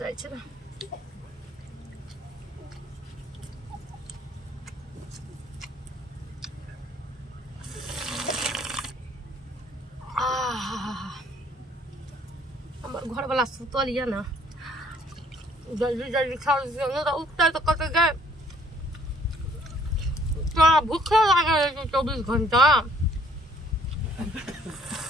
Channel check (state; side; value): normal; both; correlation 0.62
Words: छै। हमर घर वाला सुतल ये ना, जल्दी जल्दी खा लियो तो उठते तो कत गए। भूखे लगे 24 घंटा।